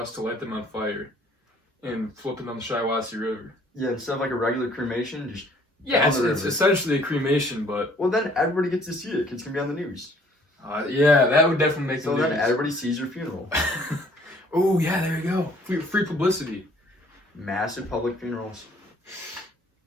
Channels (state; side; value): normal; both; correlation 0.59